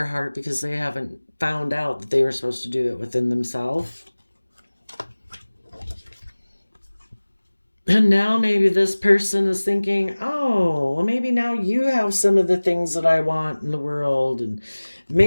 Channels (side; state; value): both; inverted; correlation -1.00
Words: heart because they haven't found out that they were supposed to do it within themselves. And now maybe this person is thinking, oh, well, maybe now you have some of the things that I want in the world, and